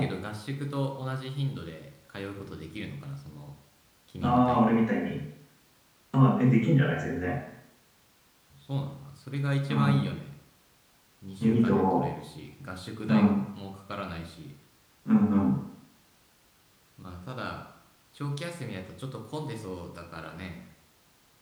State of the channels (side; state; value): both; identical; correlation 1.00